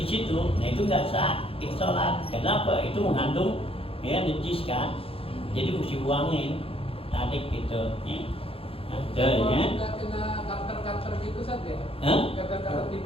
situ, nah itu nggak sah kita sholat. Kenapa? Itu mengandung ya najis kan, jadi mesti buangin, tarik gitu. Ya. Ada ya. Kena cutter gitu saja. Cutter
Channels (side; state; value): right; late; 0.27 ms